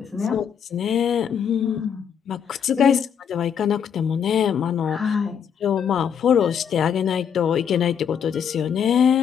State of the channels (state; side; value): quieter; right; 7.8 dB